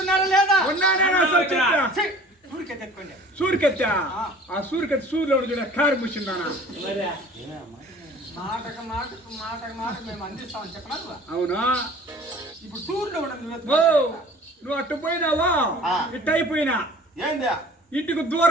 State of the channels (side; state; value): both; normal; correlation 0.47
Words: లేదా ఉన్నానేనా సంశయం? ఊరికే తెచ్చుకోండి సూరికెత్తా ఆ సూరికెత్తి సూర్యులో చూడ కారు ముచ్చిందానా మాటకు మేము అందిస్తామని చెప్పనా నువ్వు? అవునా ఇప్పుడు టూర్లో ఉండదు ఓ నువ్వు అట్టు పోయినావా ఇట్టు అయిపోయినా ఏందా ఇంటికి